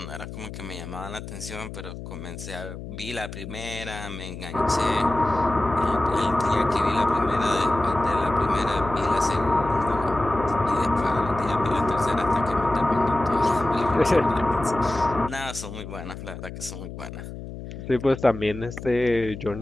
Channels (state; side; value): noise; left; hum, 10 dB below the sound